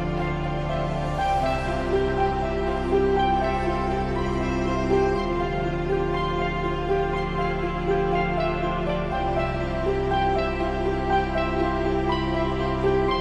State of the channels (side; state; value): both; identical; correlation 1.00